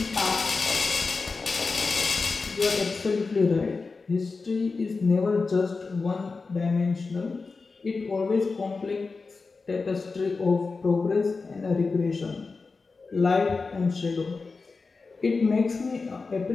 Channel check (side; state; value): right; quieter; 4.2 dB